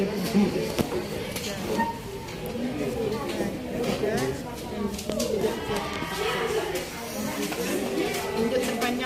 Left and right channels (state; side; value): identical; both; correlation 1.00